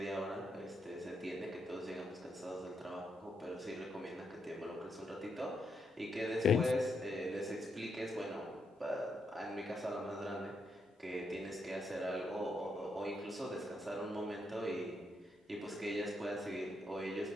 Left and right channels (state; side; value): normal; both; correlation 0.79